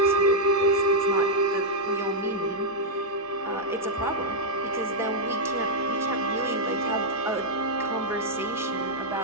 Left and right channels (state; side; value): normal; both; correlation -0.02